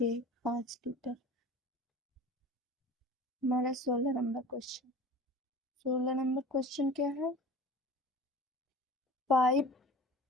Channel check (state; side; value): normal; both; correlation 0.40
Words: 5 लीटर। हमारा 16 नंबर क्वेश्चन। 16 नंबर क्वेश्चन क्या है? पाइप